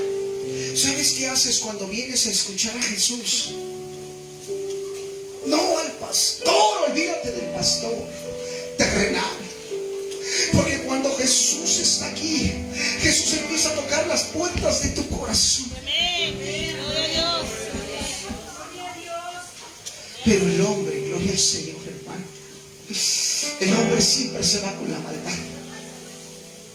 ¿Sabes qué haces cuando vienes a escuchar a Jesús? No al pastor, olvídate del pastor terrenal. Porque cuando Jesús está aquí, Jesús empieza a tocar las puertas de tu corazón. Pero el hombre, gloria al Señor, hermano, el hombre siempre se va con la maldad.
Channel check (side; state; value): both; identical; correlation 1.00